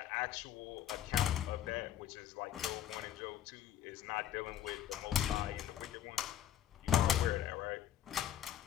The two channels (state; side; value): quieter; right; 10.9 dB